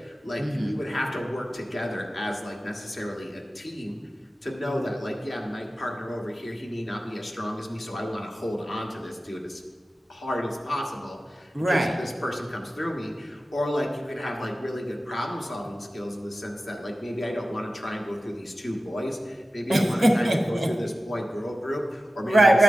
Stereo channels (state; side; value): normal; both; correlation 0.95